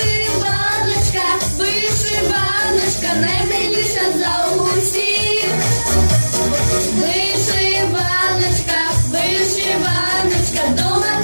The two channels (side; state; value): both; inverted; correlation -1.00